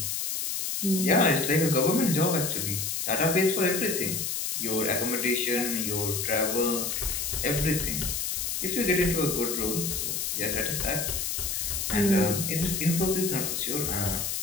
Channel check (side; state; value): left; noise; hiss, 1 dB below the sound